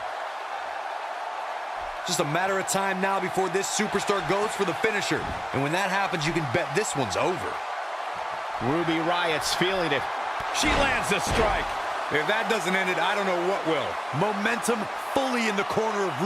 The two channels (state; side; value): identical; both; correlation 1.00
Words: Just a matter of time now before this superstar goes for the finisher. And when that happens, you can bet this one's over. Ruby Riott's feeling it. She lands the strike. If that doesn't end it, I don't know what will. Momentum fully in the corner of